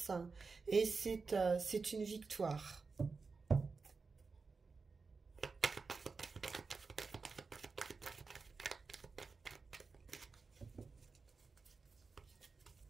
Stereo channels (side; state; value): left; quieter; 4.5 dB